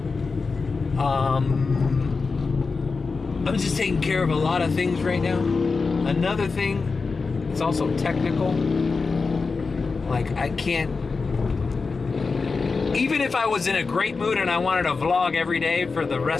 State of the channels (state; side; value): quieter; right; 4.4 dB